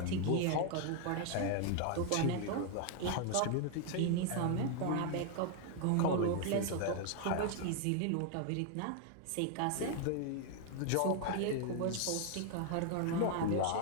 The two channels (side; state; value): both; different; correlation 0.00